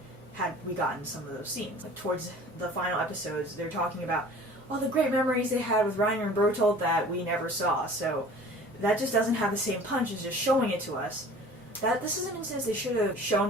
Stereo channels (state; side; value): normal; both; correlation 0.45